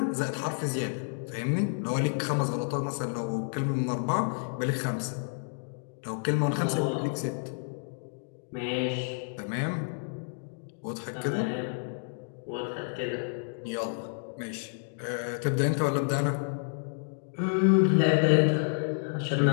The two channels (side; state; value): right; silent; digital silence